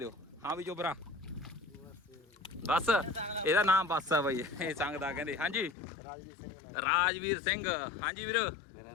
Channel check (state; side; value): drops out; right; at 5.8 s